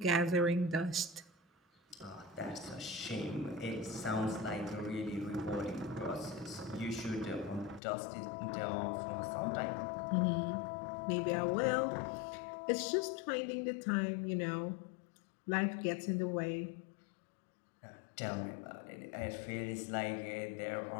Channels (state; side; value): drops out; right; at 7.8 s